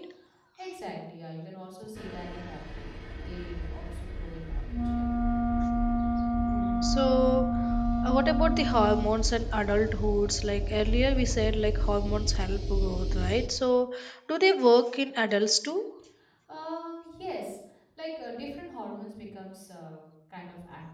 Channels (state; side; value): identical; both; correlation 1.00